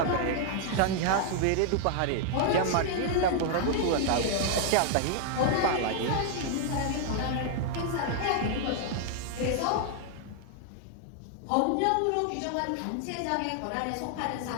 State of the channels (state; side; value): different; both; correlation 0.00